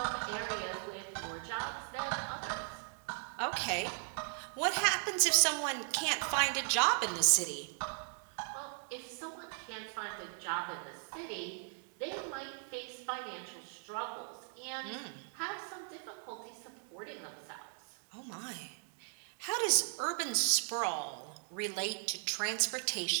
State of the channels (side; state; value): left; silent; 53 dB below the other